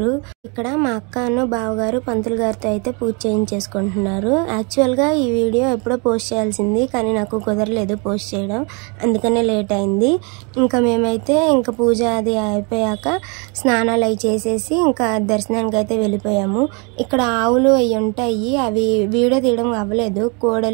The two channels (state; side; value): quieter; left; 33.0 dB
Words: ఇక్కడ మా అక్కను బావగారు పంతులు గారితో అయితే పూజ చేయించేసుకుంటున్నారు. యాక్చువల్గా ఈ వీడియో ఎప్పుడో పోస్ట్ చేయాల్సింది, కానీ నాకు కుదరలేదు పోస్ట్ చేయడం, అందుకనే లేట్ అయింది. ఇంకా మేమైతే ఇంకా పూజ అది అయిపోయాక స్నానాలు అవి చేసేసి ఇంకా దర్శనానికి అయితే వెళ్ళిపోయాము. ఇక్కడ ఆవులు అవి ఉంటాయి, అవి వీడియో తీయడం అవ్వలేదు.